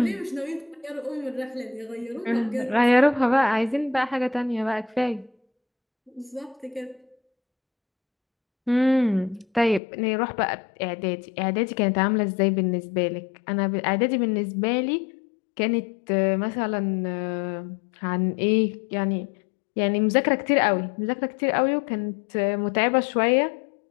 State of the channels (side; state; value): right; drops out; at 9.8 s